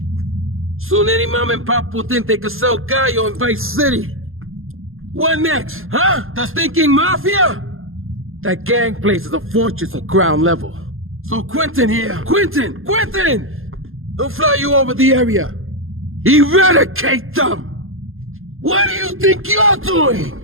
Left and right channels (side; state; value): left; late; 0.60 ms